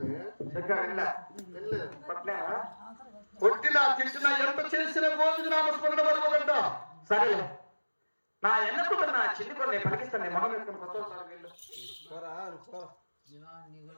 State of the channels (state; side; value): inverted; both; correlation -1.00